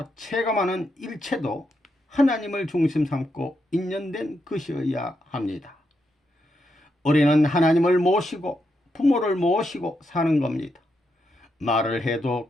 체감하는 일체도 하나님을 중심 삼고 인연된 것이어야 합니다. 우리는 하나님을 모시고 부모를 모시고 사는 겁니다. 말을 해도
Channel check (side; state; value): both; normal; correlation 0.82